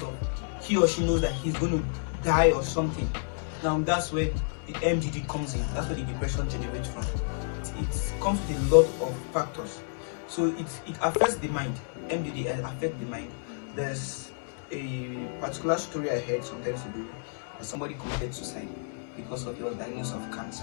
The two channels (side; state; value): right; silent; 58 dB below the other